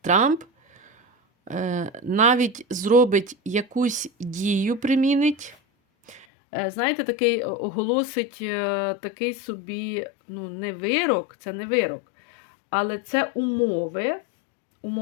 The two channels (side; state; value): right; drops out; at 6.2 s